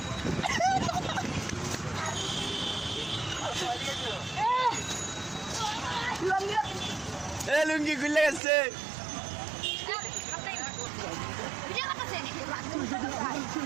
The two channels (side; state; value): left; drops out; at 8.4 s